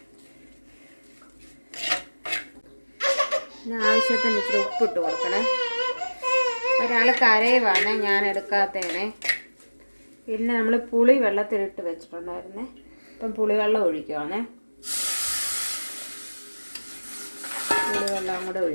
ആവശ്യത്തിന് ഇച്ചിരി ഉപ്പിട്ട് കൊടുക്കണേ. ഒരാൾ കരയുവാണ് ഞാൻ എടുക്കാത്തതിനെ. പിന്നെ നമ്മൾ പുളി വെള്ളത്തിലിട്ട് വെച്ചിട്ടുണ്ടായിരുന്നേ. ഇപ്പം പുളിവെള്ളം ഒഴിക്കുവാണേ. പുളിവെള്ളം കൂടെ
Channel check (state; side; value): inverted; both; correlation -1.00